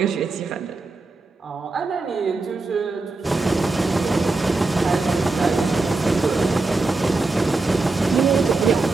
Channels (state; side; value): quieter; left; 3.4 dB